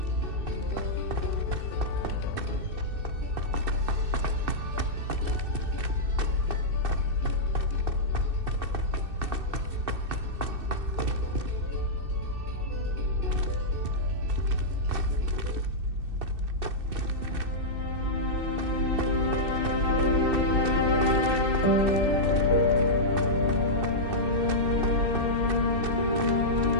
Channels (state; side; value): late; left; 2.6 ms